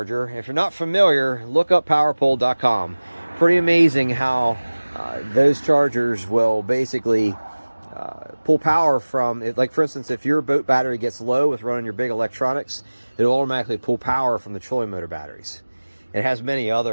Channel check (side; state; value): both; inverted; correlation -1.00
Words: If you're not familiar, look up powerpole.com. Pretty amazing how those chargers will basically pull power from it. Like, for instance, if your boat battery gets low with running your big electronics, it'll automatically pull power from the trolling motor batteries. It has many